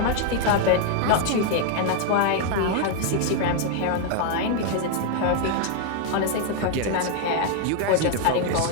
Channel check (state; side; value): different; both; correlation 0.00